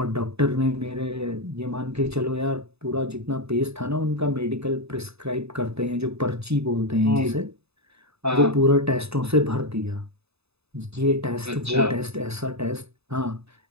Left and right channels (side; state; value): left; late; 0.79 ms